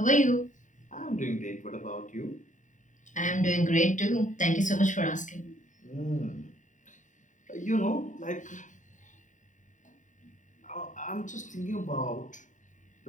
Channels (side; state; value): right; late; 0.36 ms